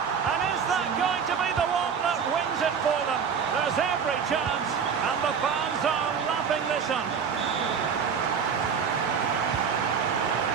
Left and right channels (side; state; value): left; quieter; 6.6 dB